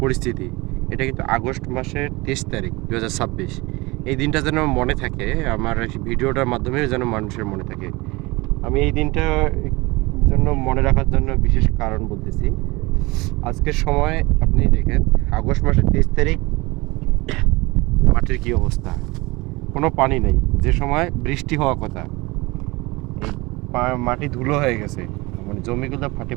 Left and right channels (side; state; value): left; quieter; 23.2 dB